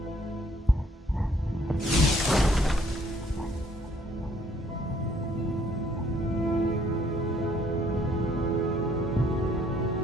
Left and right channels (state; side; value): normal; both; correlation 0.63